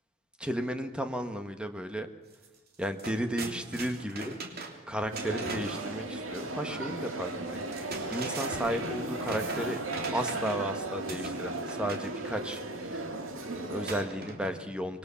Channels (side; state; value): both; normal; correlation 0.48